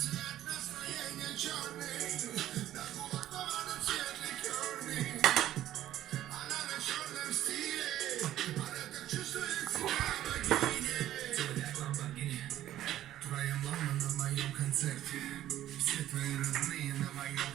Все твои родные на моем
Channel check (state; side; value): quieter; left; 13.0 dB